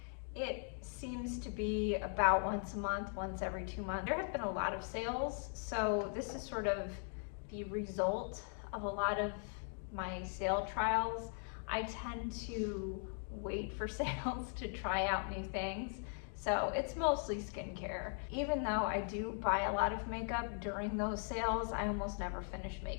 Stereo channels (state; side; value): silent; right; 51 dB below the other